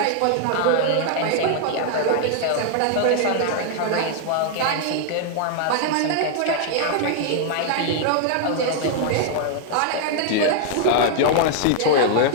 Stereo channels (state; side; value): different; both; correlation 0.00